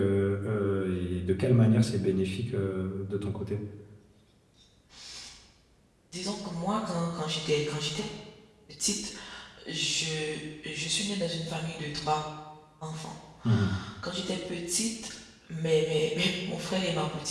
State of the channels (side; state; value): both; identical; correlation 1.00